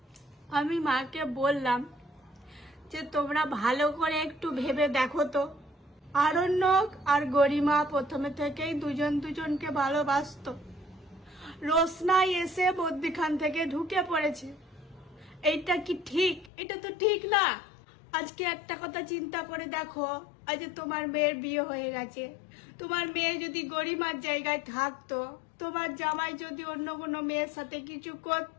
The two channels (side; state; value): right; drops out; at 16.5 s